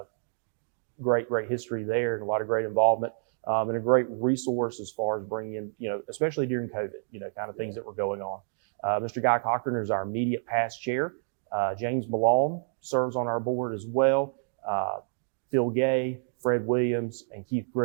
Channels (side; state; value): left; silent; digital silence